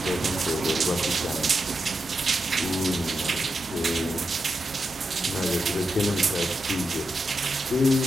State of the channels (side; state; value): both; normal; correlation 0.87